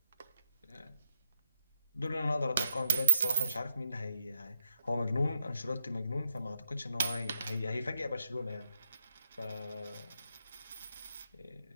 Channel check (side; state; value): both; inverted; correlation -0.81